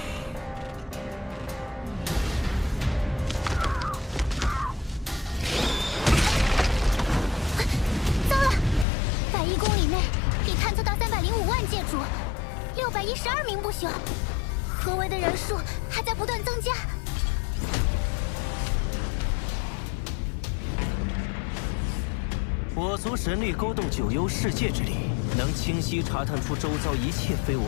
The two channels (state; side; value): drops out; right; at 8.8 s